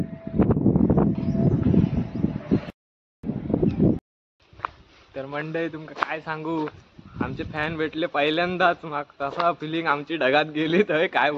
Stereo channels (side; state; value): both; identical; correlation 1.00